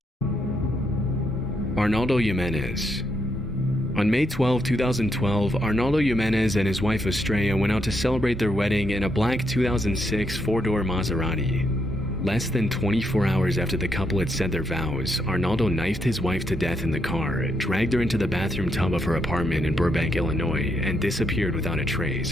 Arnaldo Yenz. On May 12, 2012, Arnaldo Yenz and his wife Estrella went out to celebrate their wedding in a black 2006 four-door Maserati. Less than 24 hours after the couple had said their vows, Arnaldo knifed his wife to death in the car, dragged her into the bathroom tub of her apartment in Burbank, Illinois, and disappeared without a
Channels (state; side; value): normal; both; correlation 0.79